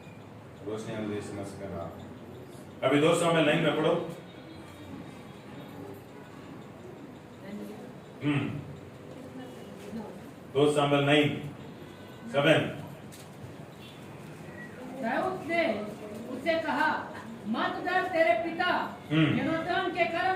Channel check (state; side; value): identical; both; correlation 1.00